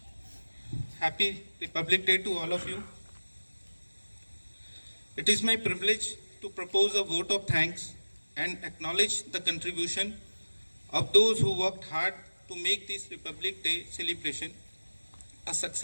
Happy Republic Day to all of you. It is my privilege to propose a vote of thanks and acknowledge the contribution of those who worked hard to make this Republic Day celebration a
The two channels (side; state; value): both; inverted; correlation -1.00